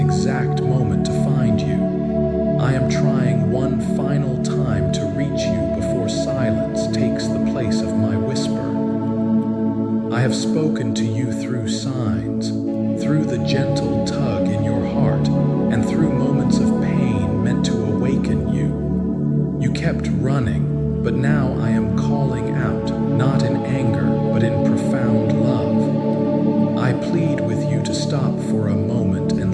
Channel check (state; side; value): identical; both; correlation 1.00